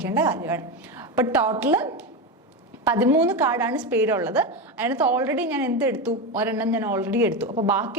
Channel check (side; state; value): both; normal; correlation 0.16